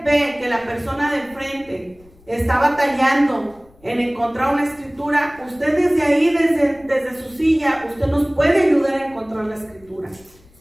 ve que la persona de enfrente está batallando en encontrar una escritura, usted desde ahí, desde su silla, usted nos puede ayudar a encontrar la escritura.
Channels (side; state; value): left; noise; rumble, 28 dB below the sound